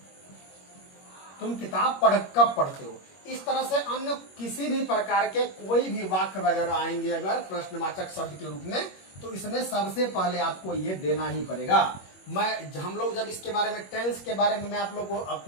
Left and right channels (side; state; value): right; late; 21 ms